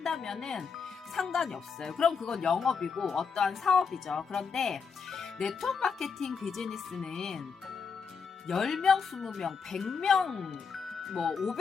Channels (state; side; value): quieter; right; 5.7 dB